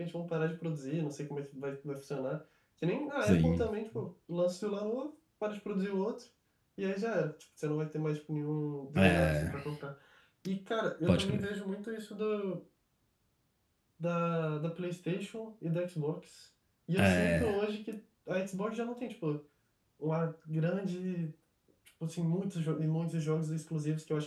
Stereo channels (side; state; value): both; identical; correlation 1.00